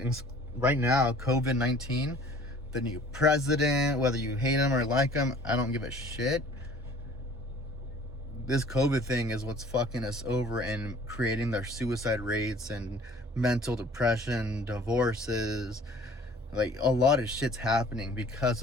right now, COVID-19, the new president, whether you hate him or like him, I don't give a shit. This COVID thing is what's fucking us over and creating their suicide rates and mental depression, divorces. Like, a lot of shit's happening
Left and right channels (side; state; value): both; normal; correlation 0.50